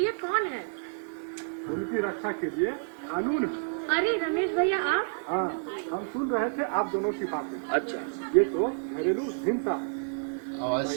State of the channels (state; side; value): silent; left; digital silence